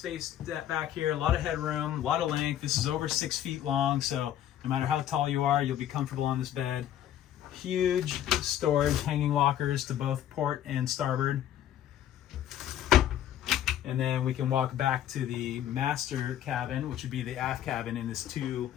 back here, a lot of headroom, a lot of length. This is over 6 feet long, so no matter how tall you are, you'll be comfortable on this bed. Huge storage, hanging lockers to both port and starboard. And then we can walk back to the master cabin, which would be the aft cabin in this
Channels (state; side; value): quieter; right; 11.3 dB